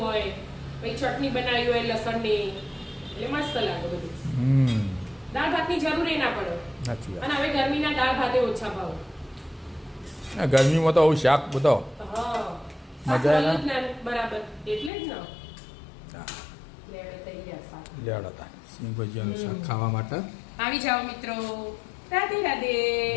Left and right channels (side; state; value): right; drops out; at 14.9 s